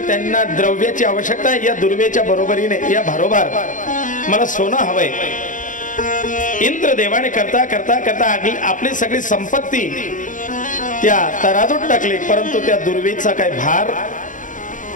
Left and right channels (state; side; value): late; right; 0.38 ms